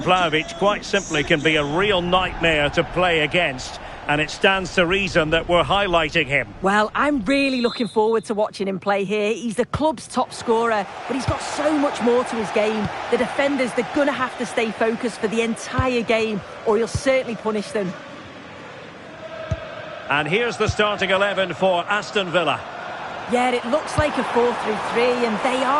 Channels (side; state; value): both; identical; correlation 1.00